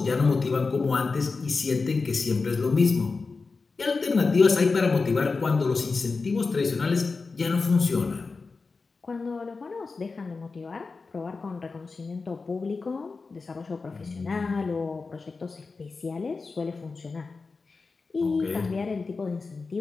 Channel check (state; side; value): quieter; right; 4.2 dB